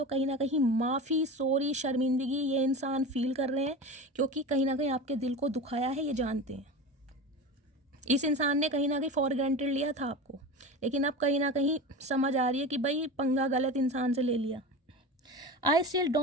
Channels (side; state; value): both; normal; correlation 0.29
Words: कहीं ना कहीं माफ़ी, सॉरी, शर्मिंदगी ये इंसान फील कर रहे हैं, क्योंकि कहीं ना कहीं आपके दिल को दुखाया है, ये जानते हैं। इस इंसान ने कहीं ना कहीं फॉर ग्रांटेड लिया था आपको, लेकिन अब कहीं ना कहीं समझ आ रही है कि भाई पंगा गलत इंसान से ले लिया। I still